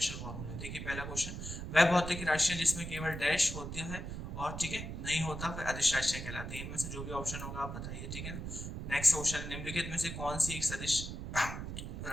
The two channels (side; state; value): right; noise; rumble, 6 dB below the sound